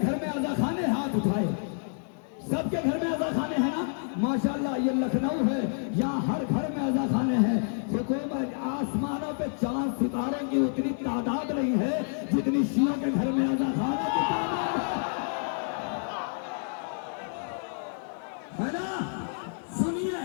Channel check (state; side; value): silent; right; 59 dB below the other